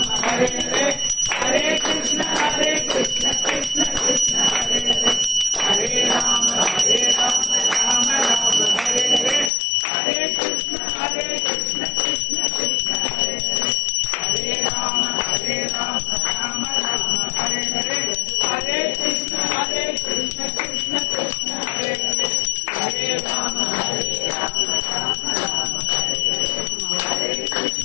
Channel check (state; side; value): drops out; right; at 9.5 s